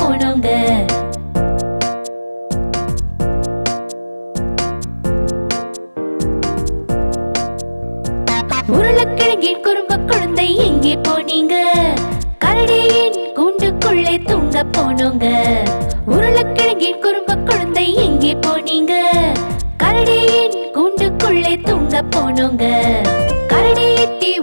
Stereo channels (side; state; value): both; inverted; correlation -1.00